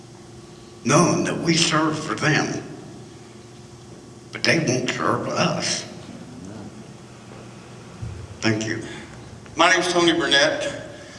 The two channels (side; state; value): both; identical; correlation 1.00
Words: knowing that we serve for them, but they won't serve us? Thank you. My name's Tony Burnett,